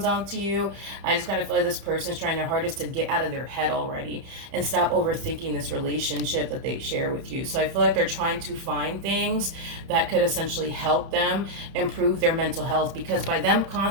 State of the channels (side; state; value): left; late; 30 ms